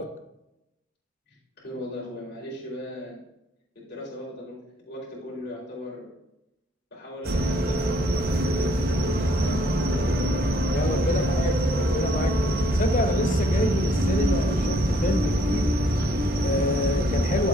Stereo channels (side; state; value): both; normal; correlation 0.66